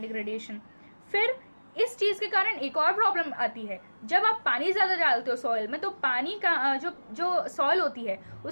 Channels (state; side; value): inverted; both; correlation -1.00